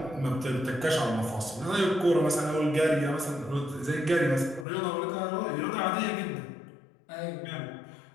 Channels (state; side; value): drops out; right; at 4.7 s